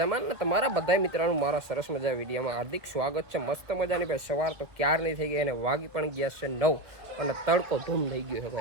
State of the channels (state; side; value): late; left; 1.4 ms